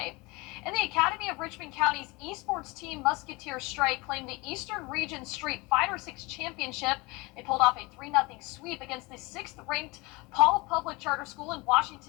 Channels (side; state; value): right; quieter; 24.9 dB